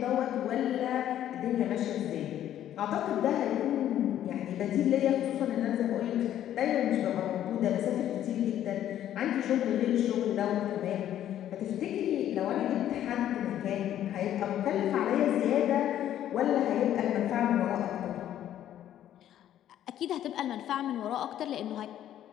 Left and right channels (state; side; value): quieter; right; 11.5 dB